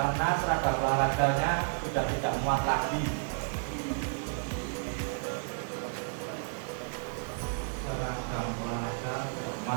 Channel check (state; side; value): silent; left; 57 dB below the other